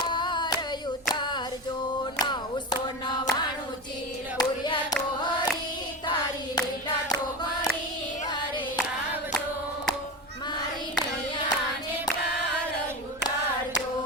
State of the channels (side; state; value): both; normal; correlation 0.23